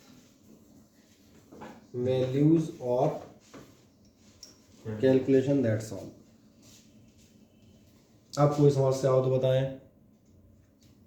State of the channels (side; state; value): both; identical; correlation 1.00